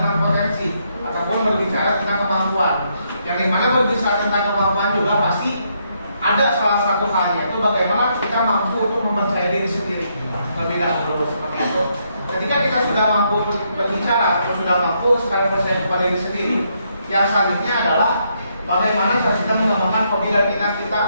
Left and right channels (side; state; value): both; inverted; correlation -0.76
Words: potensi ataupun berbicara tentang kemampuan. Yang dimana berbicara tentang kemampuan juga pasti ada salah satu halnya itu bagaimana kita mampu untuk mempercayai diri sendiri. Lebih dahulu seperti itu. Ketika kita sudah mampu berbicara atau sudah mampu sekali percaya kepada diri sendiri, yang selanjutnya adalah bagaimana cara kita mengembangkan hobi dan minat kita.